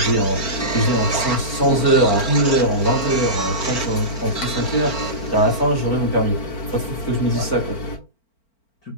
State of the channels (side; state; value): right; late; 4.4 ms